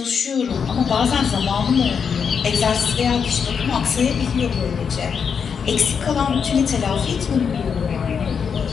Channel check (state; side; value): quieter; right; 6.5 dB